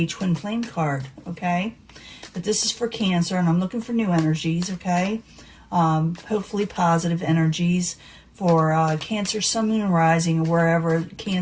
twin flame card, okay? But this is for Cancer, and I'm looking for new energies, okay? Hopefully positive energies for Cancer, Sun, Moon, and Rising, or wherever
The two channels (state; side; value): identical; both; correlation 1.00